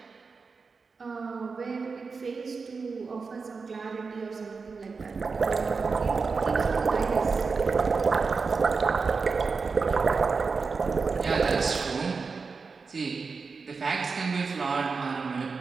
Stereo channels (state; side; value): quieter; left; 4.7 dB